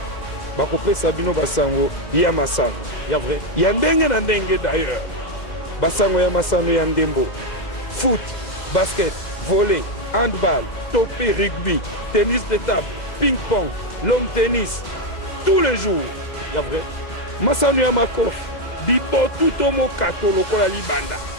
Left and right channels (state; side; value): late; right; 2.0 ms